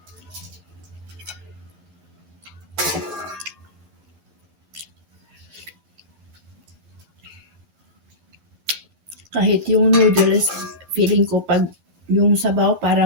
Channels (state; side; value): late; left; 11 ms